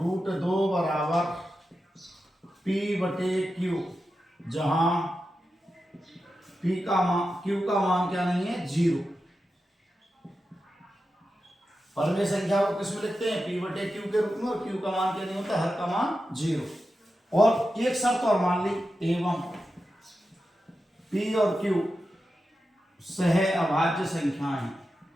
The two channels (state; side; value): normal; both; correlation 0.91